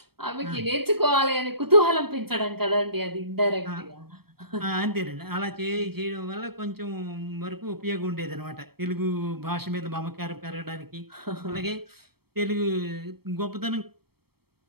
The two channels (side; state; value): left; late; 0.96 ms